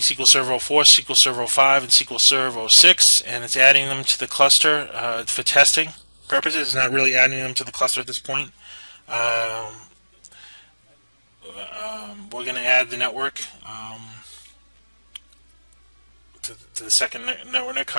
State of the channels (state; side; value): inverted; both; correlation -1.00